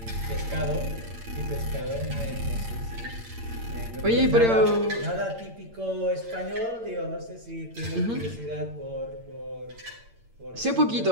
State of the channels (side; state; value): left; late; 8.8 ms